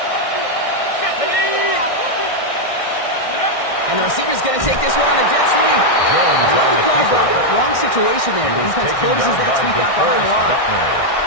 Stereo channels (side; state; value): right; late; 1.6 ms